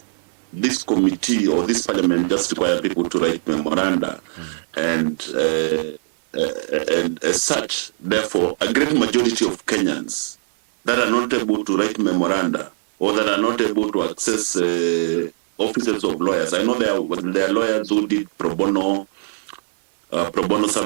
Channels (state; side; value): silent; left; 65 dB below the other